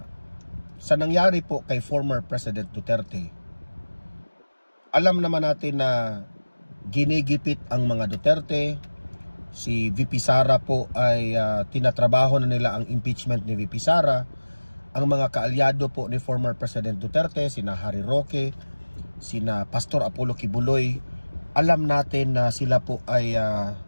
sa nangyari po kay former President Duterte, alam naman natin na ginigipit ang mga Duterte. Si VP Sara po ay tinatrabaho na nila ang impeachment ni VP Sara. Ang mga kaalyado po ni former President Duterte, sina Harry Roque, sina Pastor Apollo Kibuloy, alam natin na sila po ay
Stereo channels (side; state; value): both; inverted; correlation -1.00